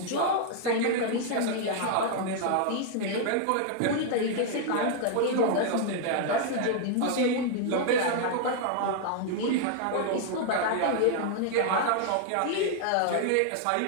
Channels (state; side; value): different; both; correlation 0.00